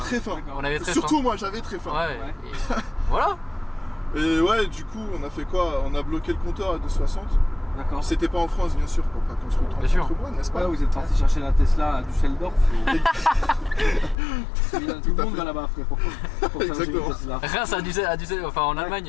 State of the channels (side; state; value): right; drops out; at 14.2 s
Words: fin. On avait très Surtout faim. moi, j'avais très faim. Ouais. Ouais. Et voilà. Et ouais, du coup, on a fait quoi? On a bloqué le compteur à 2,60. D'accord. C'était pas en France, bien sûr, pour pas qu'on se retrouve Bien sûr. entre moi, n'est-ce pas? Ouais, vous êtes parti chercher la Tesla à Düsseldorf. Tout le monde va là-bas, frère, pour charger Exactement. une Tesla. Reims enfin en